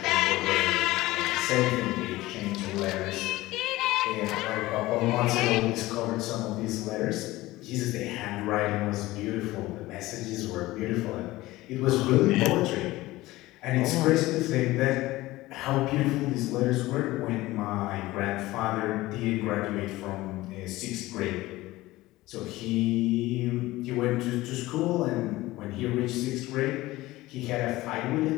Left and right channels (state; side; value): quieter; right; 18.2 dB